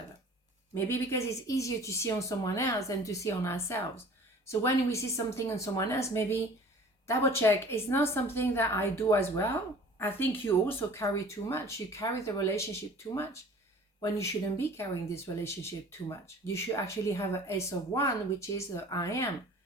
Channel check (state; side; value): normal; both; correlation 0.46